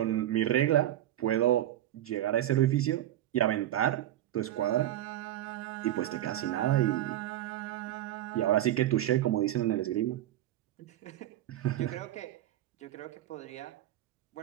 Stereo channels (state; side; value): quieter; left; 13.1 dB